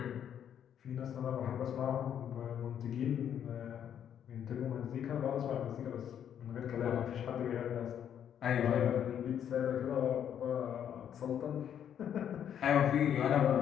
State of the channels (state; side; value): quieter; right; 9.3 dB